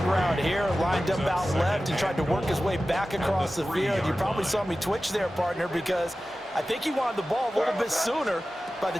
route here, lined up out left and tried to work his way back across the field. You probably saw me twitch there, partner, because I think he wanted the ball a little bit sooner. By the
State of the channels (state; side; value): normal; both; correlation 0.95